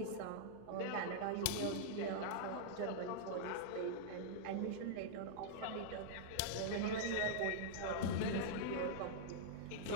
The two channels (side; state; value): both; different; correlation -0.02